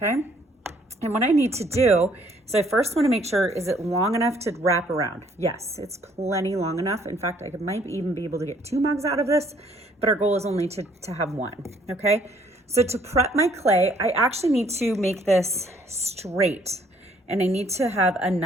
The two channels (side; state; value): both; normal; correlation 0.63